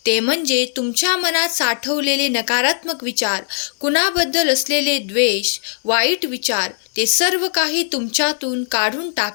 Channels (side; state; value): right; silent; digital silence